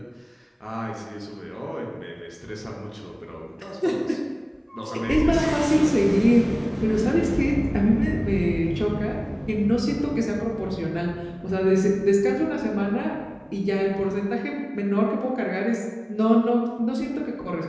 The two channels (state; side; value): identical; both; correlation 1.00